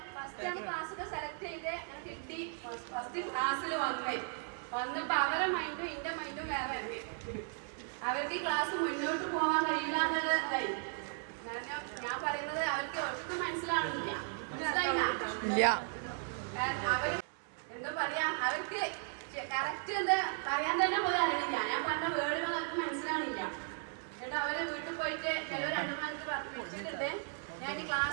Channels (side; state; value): left; silent; 54 dB below the other